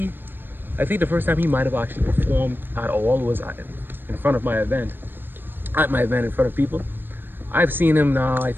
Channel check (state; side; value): late; left; 0.096 ms